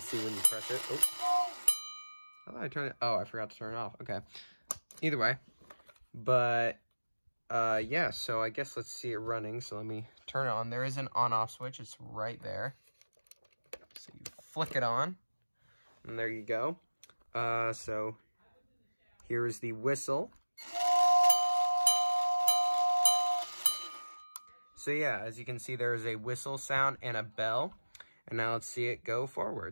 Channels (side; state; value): both; inverted; correlation -1.00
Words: when you press it. Oh, how did I turn it? Oh, I forgot to turn it off. Okay. Either way. But, yeah, so I guess let's see it running. So let me turn it on. There is an on-off switch. It's right there. So you flick it on, and there you go. So here is the whistle. So yeah, as you can see, there is a whistle sound and a bell. And now let's see it go